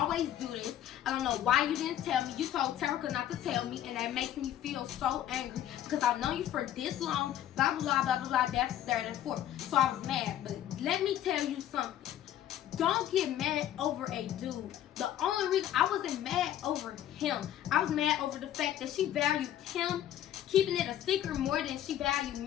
do this. I don't know why you didn't tell me. You told Terica not to tell me, and that makes me feel so angry because I've known you for this long, blah, blah, blah, blah, blah, blah, that's third and fourth. So I was mad, but let me tell you something. Don't get mad over a dude. The only reason I wasn't mad over him. I was mad over the fact that she valued him keeping it a secret more than she valued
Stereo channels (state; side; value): quieter; right; 11.7 dB